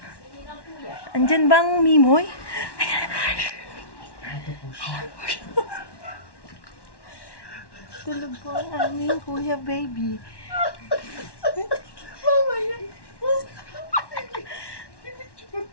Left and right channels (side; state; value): right; late; 1.1 ms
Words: Andyan bang Mimoy? Tulog po ang aming kuya baby. Mama yan.